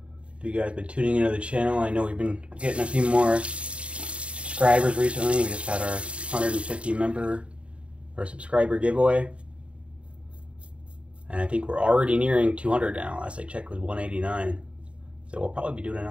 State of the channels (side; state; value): left; late; 0.060 ms